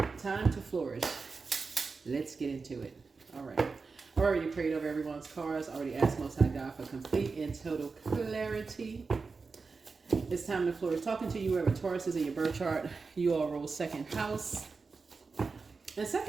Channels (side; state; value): left; quieter; 4.5 dB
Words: Time to flourish. Let's get into it. All right. I already prayed over everyone's cards. I already asked Most High God for complete and total clarity. It's time to flourish. Talking to you wherever Taurus is in your birth chart. You all rule second house. And